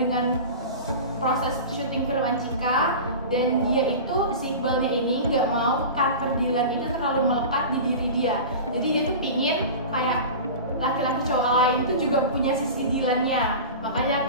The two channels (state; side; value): inverted; both; correlation -0.31